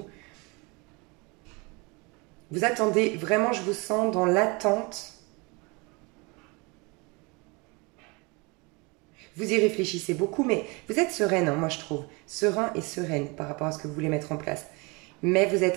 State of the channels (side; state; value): left; quieter; 28.2 dB